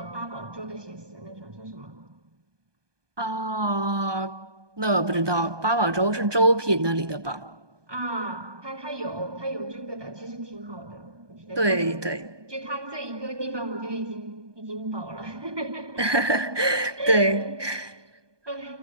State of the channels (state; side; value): late; left; 1.2 ms